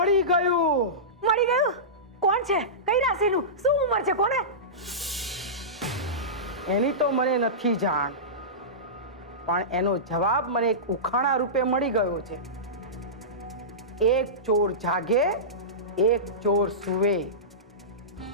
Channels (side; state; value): both; normal; correlation -0.19